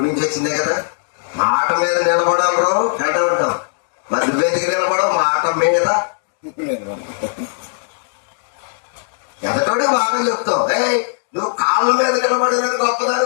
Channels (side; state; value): right; silent; digital silence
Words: నుంచి వచ్చిందే కదా, మాట మీద నిలబడాలి అంటూ ఉంటాం. మరి నువ్వెందుకు నిలబడవు? మాట మీద. ఎదటోడికి బాగా చెప్తావు, నువ్వు కాళ్ళ మీద నిలబడినది గొప్పదాని